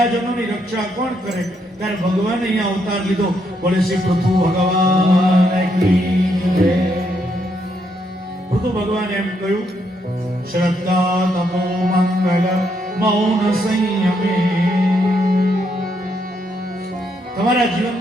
રક્ષા કોણ કરે? ત્યારે ભગવાને અહીંયા અવતાર લીધો. બોલે શ્રી પૃથુ ભગવાન કી જય. પૃથુ ભગવાન એમ કહ્યું, શ્રદ્ધા તમો મંગલ મૌન સંયમે. તમારા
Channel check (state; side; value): normal; both; correlation 0.76